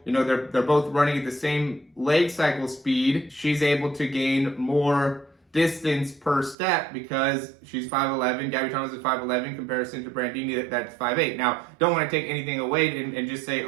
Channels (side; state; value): left; drops out; at 6.6 s